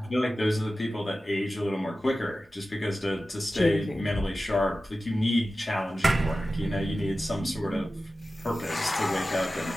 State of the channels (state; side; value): normal; both; correlation 0.94